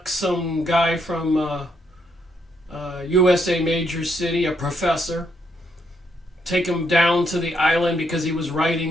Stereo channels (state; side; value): normal; both; correlation 0.75